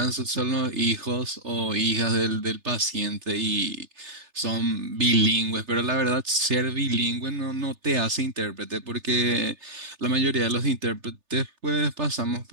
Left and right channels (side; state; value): left; late; 3.3 ms